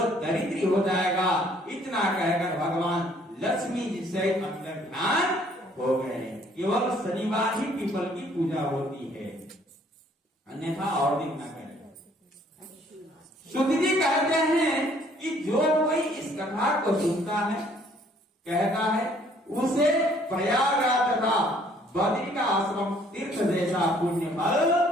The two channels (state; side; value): normal; both; correlation 0.61